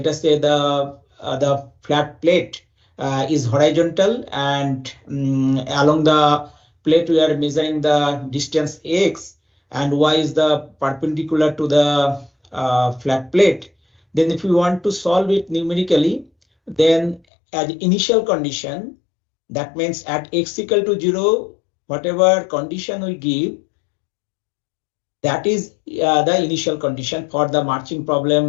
us say the flat plate is horizontal, and along the plate we are measuring the distance x, and y is the perpendicular to the flat plate. Then if we want to solve it numerically, then as initial condition, that means at x equal to 0, whatever condition we give, that is the initial condition for the marching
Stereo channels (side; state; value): right; drops out; at 17.2 s